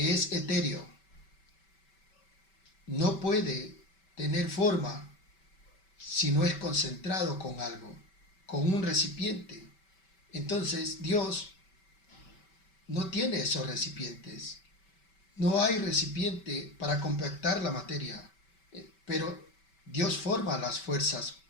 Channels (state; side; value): late; right; 5.2 ms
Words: es etéreo no puede tener forma si no es concentrado con algo, con un recipiente, entonces Dios no tiene esos recipientes. No hay recipiente para compactar la materia, pero Dios forma las fuerzas